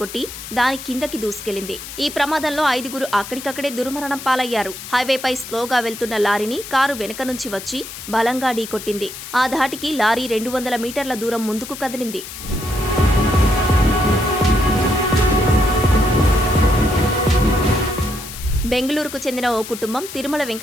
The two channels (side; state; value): left; noise; hiss, 11 dB below the sound